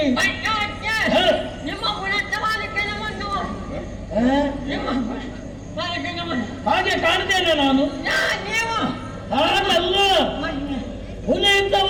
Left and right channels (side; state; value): both; identical; correlation 1.00